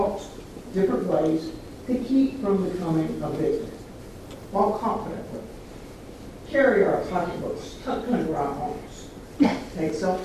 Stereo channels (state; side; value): identical; both; correlation 1.00